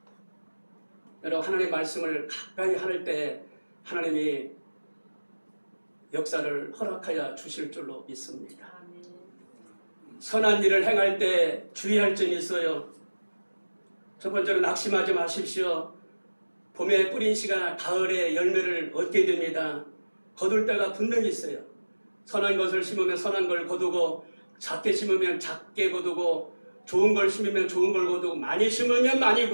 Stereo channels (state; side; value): inverted; both; correlation -1.00